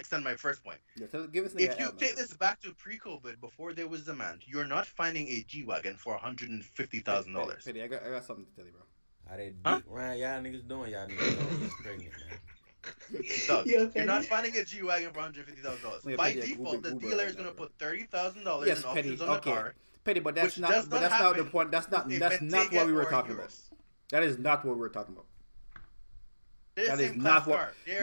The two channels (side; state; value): both; inverted; correlation -1.00